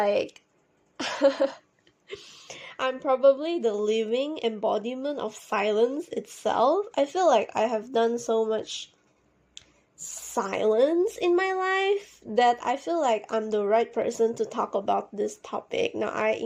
I'm probably the living embodiment of silence itself. I feel like I have done so much silence in my life that I feel like I'm the right person to talk about this topic. Now, I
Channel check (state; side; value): identical; both; correlation 1.00